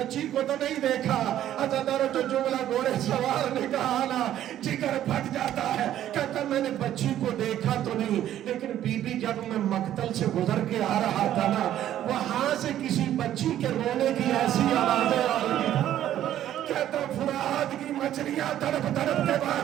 کو تو نہیں دیکھا؟ عزادار جو جملہ گھوڑے سوار نے کہا نا، جگر پھٹ جاتا ہے، کہتا میں نے بچی کو دیکھا تو نہیں، لیکن بی بی جب میں مقتل سے گزر کے آ رہا تھا نا، وہاں سے کسی بچی کے رونے کی ایسی آوازیں آ رہی تھی، کہتا فرات کی مچھلیاں تڑپ تڑپ کے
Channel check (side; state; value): left; quieter; 11.8 dB